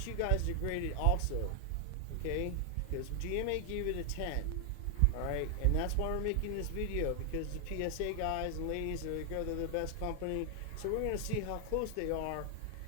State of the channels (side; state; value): both; different; correlation 0.00